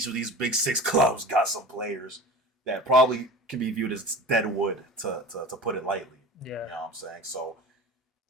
of these big six clubs got some players that probably can be viewed as dead wood, to put it lightly. Yeah. You know what I'm saying? So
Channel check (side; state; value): both; normal; correlation 0.36